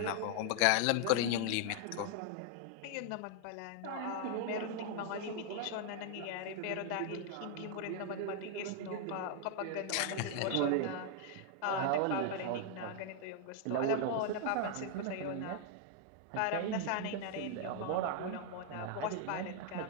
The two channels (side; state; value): both; different; correlation 0.00